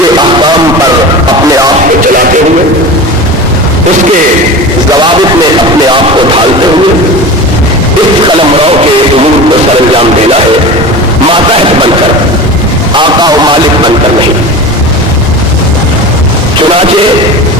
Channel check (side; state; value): both; normal; correlation 0.32